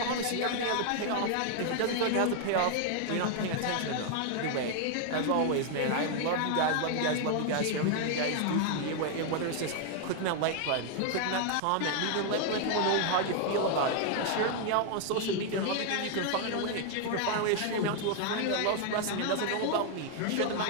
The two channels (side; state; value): both; different; correlation 0.00